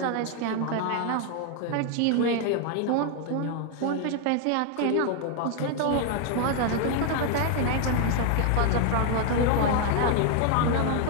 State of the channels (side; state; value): both; different; correlation 0.00